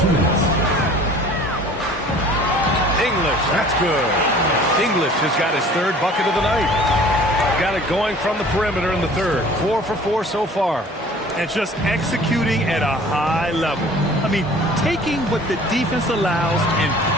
2 minutes. English, that's good. English has got his third bucket of the night. Got it going from the perimeter in the third. 4 for 4 so far. And just executing at a high level. I mean, taking what the defense allows and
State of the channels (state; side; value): normal; both; correlation 0.48